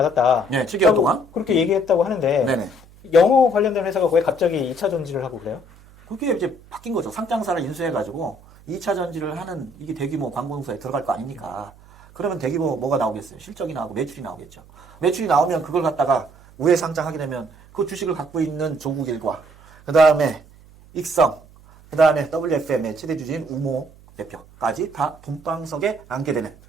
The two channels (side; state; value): right; noise; hum, 24 dB below the sound